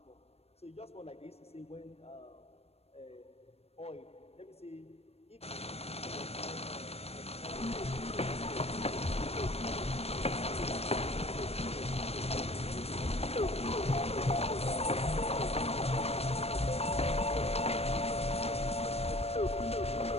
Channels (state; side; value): late; right; 0.30 ms